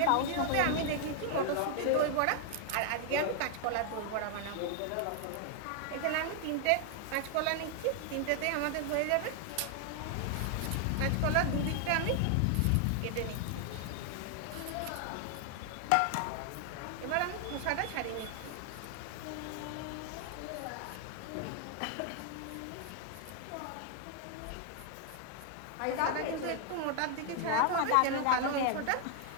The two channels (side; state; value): both; different; correlation 0.00